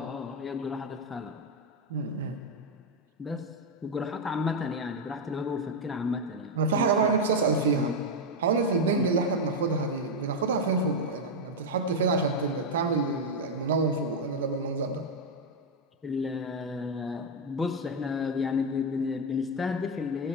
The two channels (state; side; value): normal; both; correlation 0.03